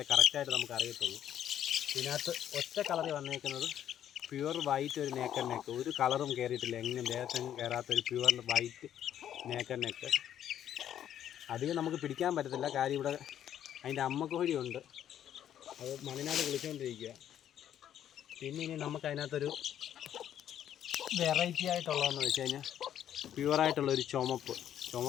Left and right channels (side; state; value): right; quieter; 10.5 dB